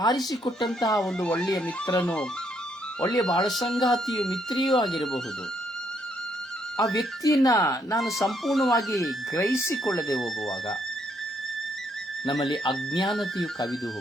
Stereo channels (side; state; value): both; normal; correlation 0.72